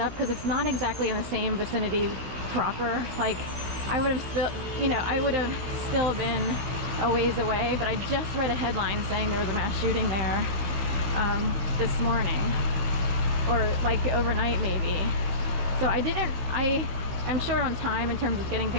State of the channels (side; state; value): left; late; 15 ms